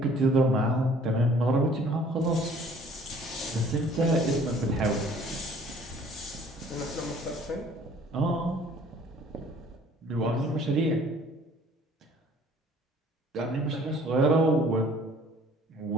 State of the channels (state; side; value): normal; both; correlation 0.55